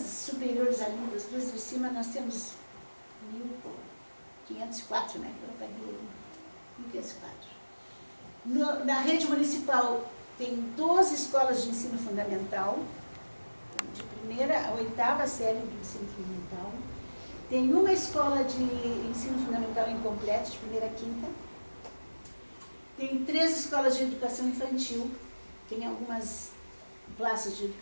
ali, das 2 de cima, nós temos 1.504, né? Eu paguei 1.504. Na rede municipal tem 12 escolas de ensino fundamental, de 1ª à 8ª série do ensino fundamental. Tem uma escola de ensino fundamental incompleto, de 1ª à 5ª. Tem 3 escolas de educação infantil. Tem algumas classes de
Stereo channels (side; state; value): both; inverted; correlation -1.00